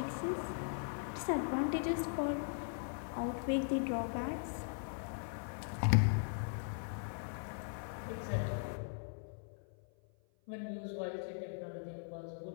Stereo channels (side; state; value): right; silent; 51 dB below the other